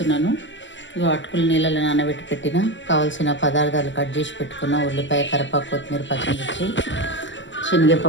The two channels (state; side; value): late; right; 0.54 ms